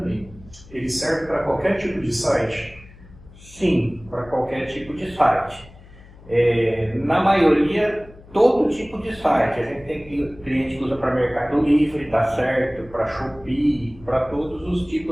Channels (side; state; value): left; noise; hum, 22 dB below the sound